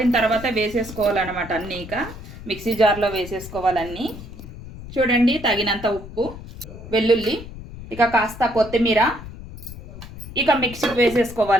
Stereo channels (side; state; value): left; noise; rumble, 14 dB below the sound